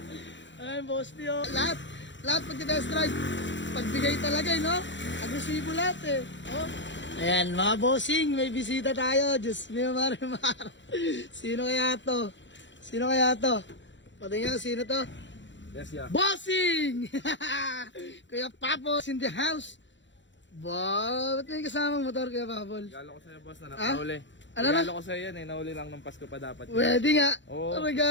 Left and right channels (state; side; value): late; right; 0.54 ms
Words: Ay, boss nyo. Lahat pag-test drive. Pagbigay talaga, no? Agresibo lahat Oh. Ayan, mga bossing, may bisita tayo. Diyos mio, marimar. Sino kaya to? Patingin, sino to? Yes, yeah. Bossing! Kuya Papos in the house. Wow, ba't may kasamang motor, Kuya Papol? Regalo ko sa'yo, boss, na nakauli. Ano na? Regalo ko sa'yo yan nauli lang ng Pasko pa dapat. Pwede nga. Oo.